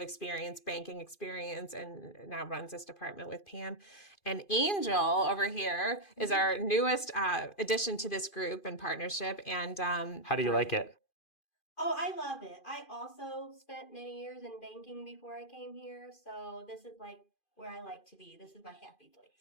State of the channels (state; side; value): late; right; 2.5 ms